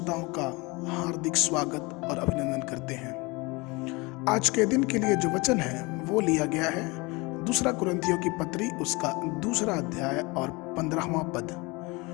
का हार्दिक स्वागत और अभिनंदन करते हैं। आज के दिन के लिए जो वचन है वो लिया गया है दूसरा कुरिन्थियों की पत्री उसका 2 अध्याय और 15वां पद।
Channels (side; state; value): right; quieter; 25.6 dB